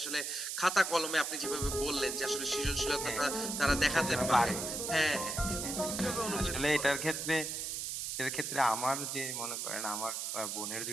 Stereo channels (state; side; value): noise; right; hiss, 3 dB below the sound